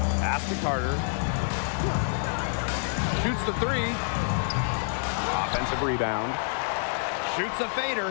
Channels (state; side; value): silent; right; digital silence